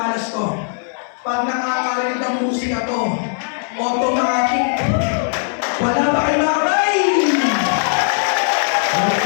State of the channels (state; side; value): silent; right; 63 dB below the other